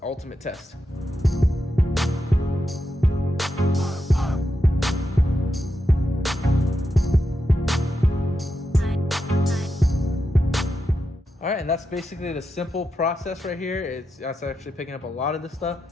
ultimate test. All right, and that's basically the simple process right here. That's actually picking up a lot of this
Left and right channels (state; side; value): normal; both; correlation 0.86